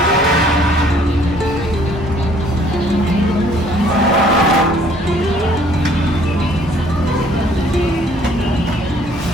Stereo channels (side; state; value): both; normal; correlation 0.60